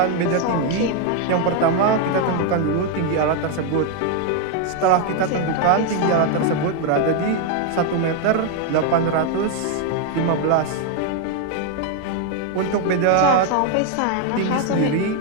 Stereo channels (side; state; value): both; different; correlation 0.01